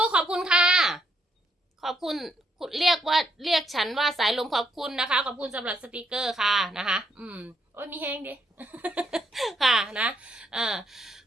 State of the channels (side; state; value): both; normal; correlation 0.74